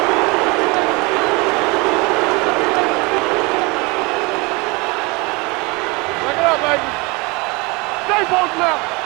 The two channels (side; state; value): left; quieter; 26.8 dB